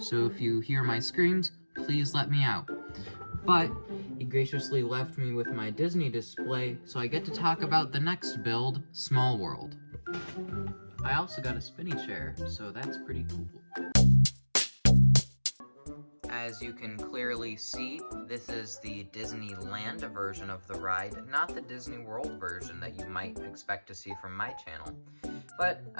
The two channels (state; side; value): inverted; both; correlation -1.00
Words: if you hear my screams, please let me out. But he graciously left me with my Disney display, so I get to talk about the next build, Small World. I also got a spinny chair, so that's pretty cool. As you can clearly see, this is the Disneyland version of the ride, not the Disney World version that you might expect to see from my channel. But